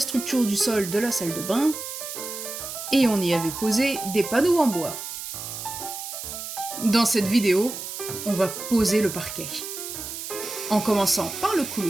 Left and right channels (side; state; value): right; noise; hiss, 8 dB below the sound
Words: du sol de la salle de bain et on y avait posé des panneaux en bois. Dans cette vidéo, on va poser le parquet, en commençant par le